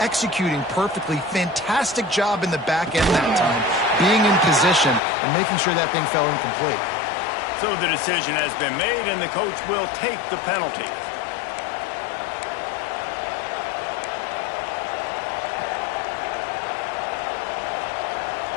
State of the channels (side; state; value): right; drops out; at 5.0 s